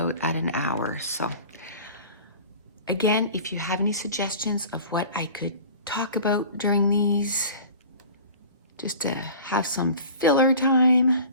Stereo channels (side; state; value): both; inverted; correlation -0.41